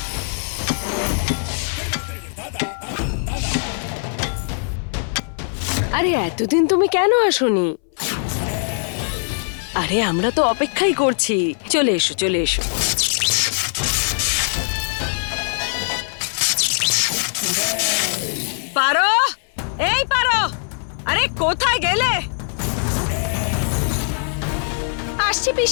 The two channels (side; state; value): right; silent; 63 dB below the other